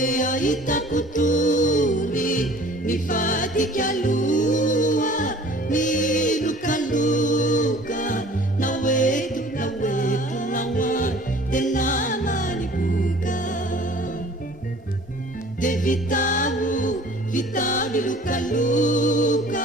ahitako tory nivadika aloha nilokaloka naoeto naoa tena maniboka de vitao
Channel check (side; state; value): both; normal; correlation 0.49